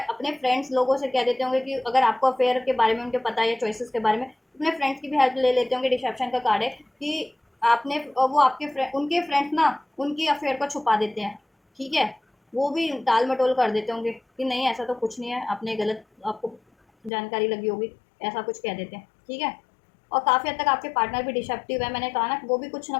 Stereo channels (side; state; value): right; drops out; at 17.1 s